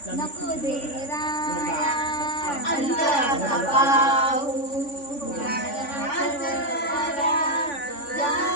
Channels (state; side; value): late; right; 3.5 ms